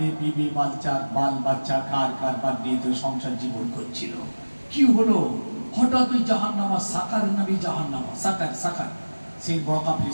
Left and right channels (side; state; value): both; inverted; correlation -1.00